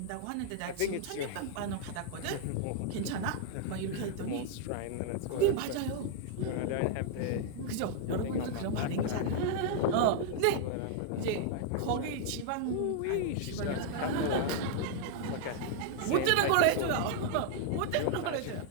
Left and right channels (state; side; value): different; both; correlation -0.01